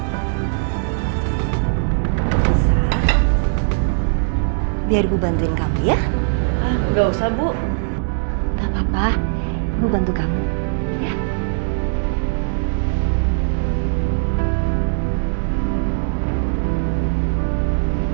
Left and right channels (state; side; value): silent; left; digital silence